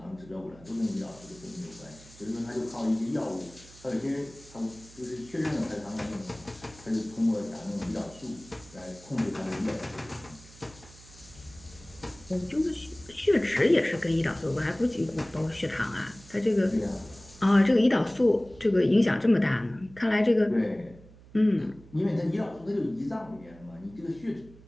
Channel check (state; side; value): noise; right; hum, 22 dB below the sound